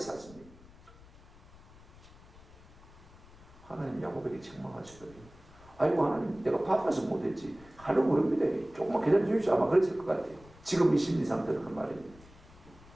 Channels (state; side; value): noise; left; rumble, 22 dB below the sound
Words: 하나님 야곱에게 책망하시더니 아이고 하나님 내가 바빠서 못했지 하려고 모릅니다. 조금만 기다려 주십시오. 아마 그랬을 것 같아요. 지금 이 심리 상태는 그 말입니다.